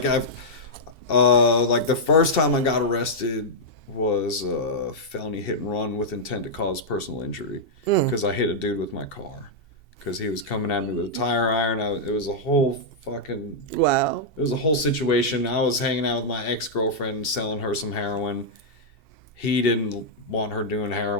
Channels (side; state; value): right; late; 2.7 ms